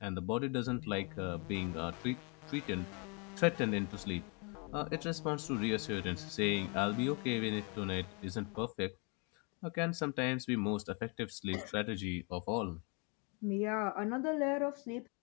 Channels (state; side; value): quieter; right; 34.1 dB